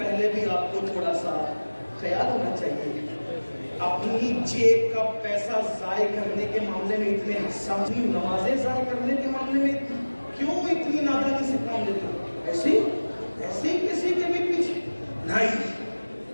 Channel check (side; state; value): both; inverted; correlation -1.00